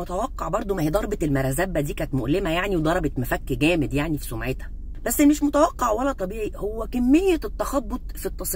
برضو، ما هي ضربه المرزبه دي كانت مؤلمه يعني، وضربت مفك جامد يعني في سمعتها. بس مش متوقع ولا طبيعي هو كميه التخبط في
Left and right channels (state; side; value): identical; both; correlation 1.00